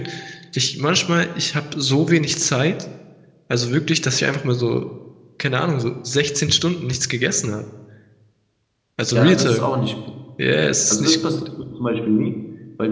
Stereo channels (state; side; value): identical; both; correlation 1.00